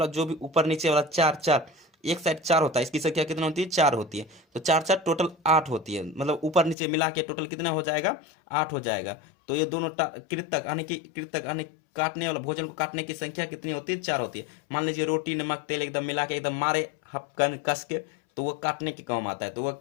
जो भी ऊपर नीचे वाला चार चार, एक साइड चार होता है, इसकी संख्या कितना होती है? चार होती है। तो चार चार टोटल 8 होती है, मतलब ऊपर नीचे मिला के टोटल कितना हो जाएगा? 8 हो जाएगा। तो ये दोनों कृतक यानी काटने वाला, भोजन को काटने की संख्या कितनी होती है? 4 होती है। मान लीजिए रोटी नमक तेल एकदम मिला के एकदम मारे हपकन कस के, तो वो काटने के काम आता है, तो वह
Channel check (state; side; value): drops out; right; at 6.8 s